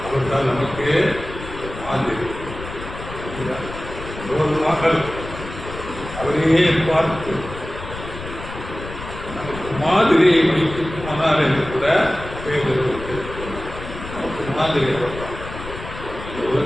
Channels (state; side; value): noise; left; rumble, 11 dB below the sound